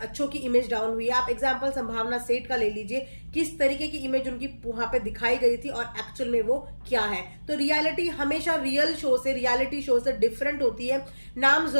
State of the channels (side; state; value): both; inverted; correlation -1.00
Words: की इमेज डाउन हुई है। आप एग्जांपल संभावना सेठ का ले लीजिए, किस तरीके की इमेज उनकी वहां पे दिखाई गई थी और एक्चुअल में वो क्या है। तो रियलिटी हमेशा रियलिटी शो से डिफरेंट होती है। नाम